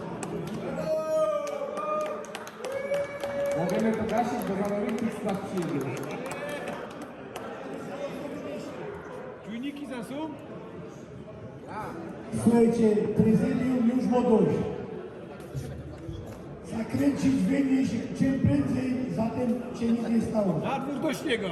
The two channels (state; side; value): identical; both; correlation 1.00